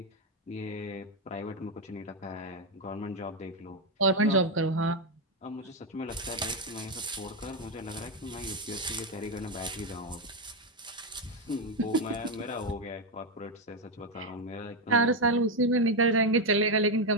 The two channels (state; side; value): normal; both; correlation 0.06